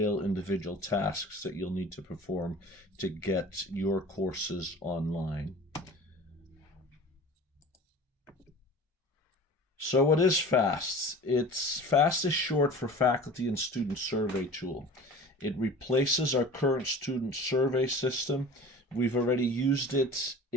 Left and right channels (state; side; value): normal; both; correlation 0.40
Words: individual tasks that you'll need to perform to get your courses online. So what is FAST? FAST is short for Faculty and Student Survey Tool. It replaces our current student survey system. We've already used it